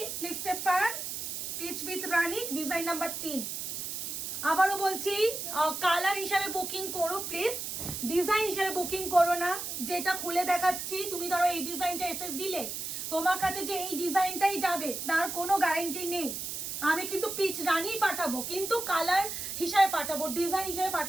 স্লিপসে পার, peach with Rani design number 3। আবারও বলছি কালার হিসাবে বুকিং করো প্লিজ, ডিজাইন হিসাবে বুকিং করো না। যেটা খুলে দেখাচ্ছি, তুমি ধরো এই ডিজাইনটা এসে দিলে, তোমার কাছে যে এই ডিজাইনটাই যাবে তার কোনো গ্যারান্টি নেই। আমি কিন্তু পিচ রানী পাঠাবো, কিন্তু কালার হিসাবে পাঠাবো, ডিজাইন হিসাবে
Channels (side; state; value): right; noise; hiss, 5 dB below the sound